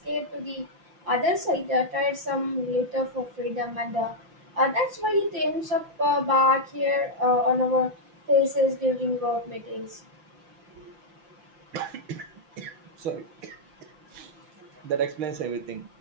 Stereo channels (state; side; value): late; left; 5.7 ms